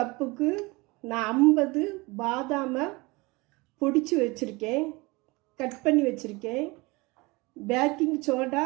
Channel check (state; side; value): quieter; left; 24.3 dB